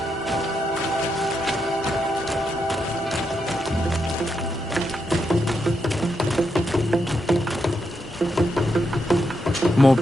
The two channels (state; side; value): normal; both; correlation 0.82